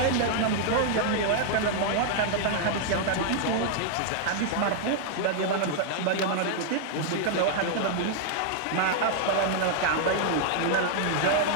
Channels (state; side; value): different; both; correlation -0.01